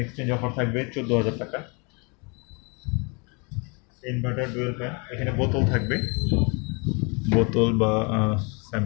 এক্সচেঞ্জ অফার থাকবে 14,000 টাকা। ইনভার্টার ডুয়েল ফ্যান, এখানে বোতল থাকবে, বোতল বা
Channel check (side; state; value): right; quieter; 32.1 dB